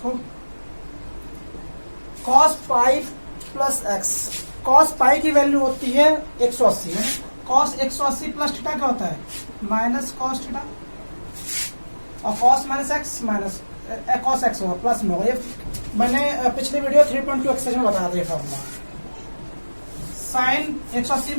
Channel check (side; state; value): both; inverted; correlation -1.00